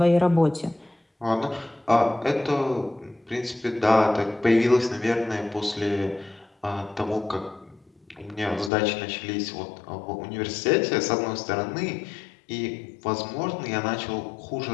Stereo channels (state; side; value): drops out; right; at 8.7 s